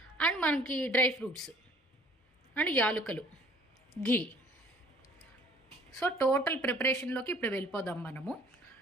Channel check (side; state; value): both; normal; correlation 0.55